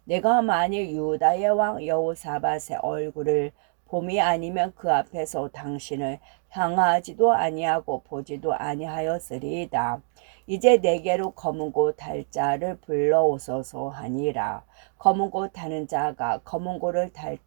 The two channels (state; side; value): silent; left; digital silence